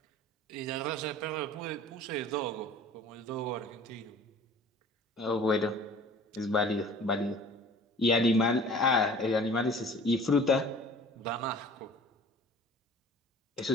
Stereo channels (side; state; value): both; normal; correlation 0.47